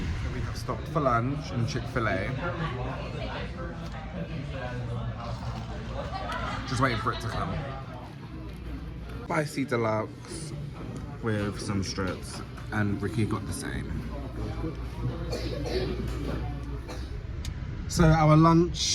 We have stopped for lunch in Chick-fil-A. Just waiting for it to come. Spicy deluxe with some strips, and Ricky got the same. So our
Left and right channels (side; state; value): both; identical; correlation 1.00